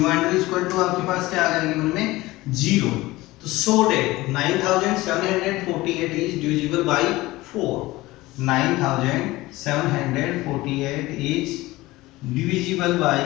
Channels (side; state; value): right; quieter; 19.2 dB